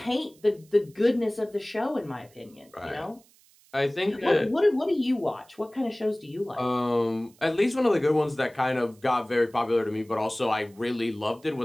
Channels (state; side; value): noise; right; hiss, 29 dB below the sound